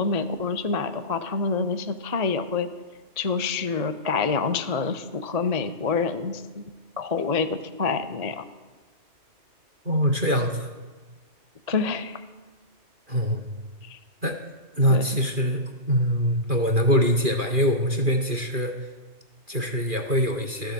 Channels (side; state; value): left; late; 2.4 ms